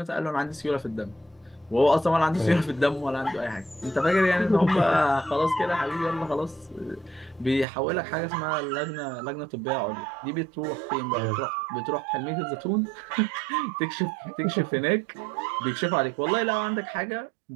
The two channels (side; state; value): left; drops out; at 7.7 s